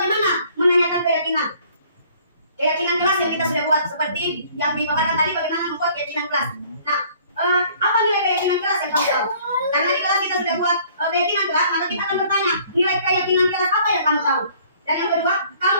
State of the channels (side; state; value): both; inverted; correlation -0.56